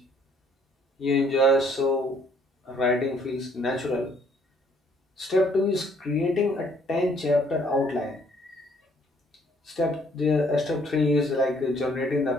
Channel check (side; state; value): both; normal; correlation 0.64